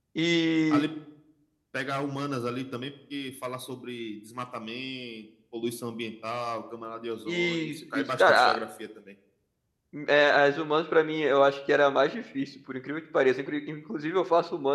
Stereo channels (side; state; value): both; identical; correlation 1.00